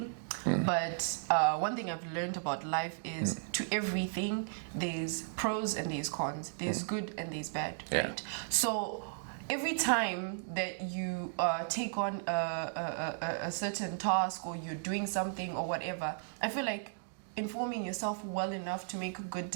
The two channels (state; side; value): silent; left; digital silence